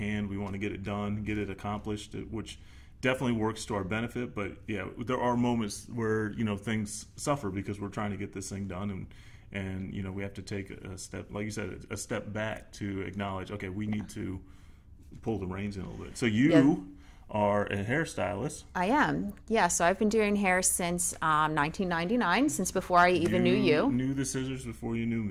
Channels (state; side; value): identical; both; correlation 1.00